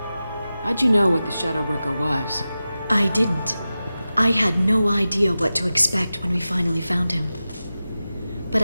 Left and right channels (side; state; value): both; inverted; correlation -0.94